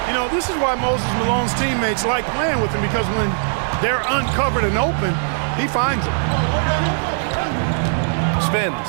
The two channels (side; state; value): left; silent; digital silence